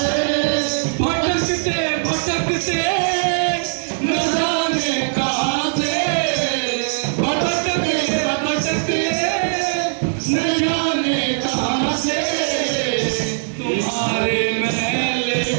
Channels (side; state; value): left; silent; digital silence